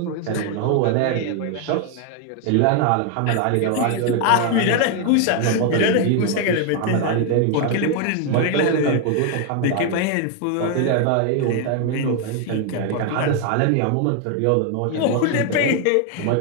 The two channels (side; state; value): both; different; correlation 0.01